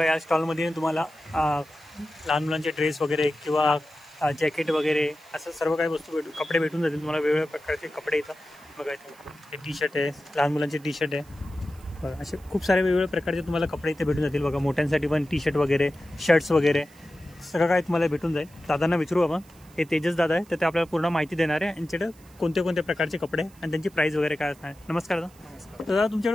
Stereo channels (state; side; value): noise; right; hiss, 27 dB below the sound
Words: या स्टॉलमध्ये तुम्हाला लहान मुलांचे ड्रेस वगैरे किंवा जॅकेट वगैरे असं सर्व काही वस्तू कपडे भेटून जातील तुम्हाला. वेगवेगळ्या प्रकारचे कपडे इथं बघा, इथे हे टी शर्ट आहे, लहान मुलांचे टी शर्ट आहे. बघा असे खूप सारे वेगवेगळ्या प्रकारचे तुम्हाला कपडे इथे भेटून जातील. बघा मोठ्यांसाठी पण टी शर्ट वगैरे, शर्ट्स वगैरे सगळं काय तुम्हाला भेटून जाईल. दादांना विचारू आपण, हे तेजस दादा आहे, तर ते आपल्याला पूर्ण माहिती देणार आहे यांच्याकडे कोणते कोणते प्रकारचे कपडे आणि त्यांची प्राईस वगैरे काय असणार. नमस्कार दादा. दादा